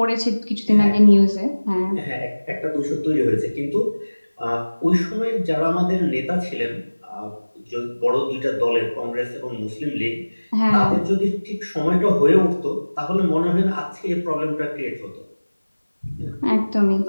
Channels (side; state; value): both; inverted; correlation -1.00